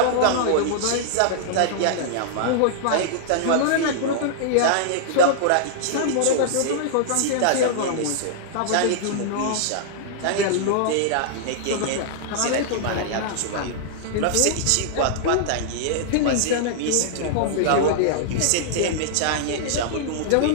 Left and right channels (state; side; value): different; both; correlation -0.01